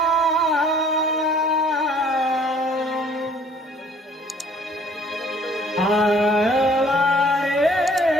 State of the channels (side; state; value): both; normal; correlation 0.57